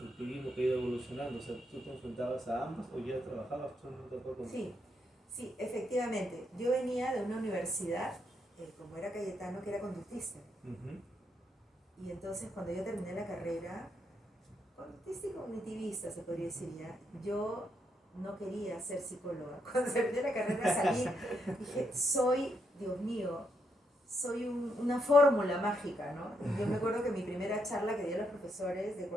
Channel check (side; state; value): both; normal; correlation 0.78